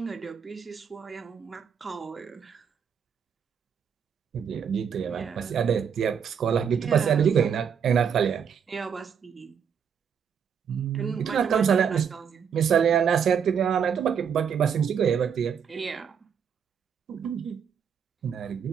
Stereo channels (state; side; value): quieter; left; 7.4 dB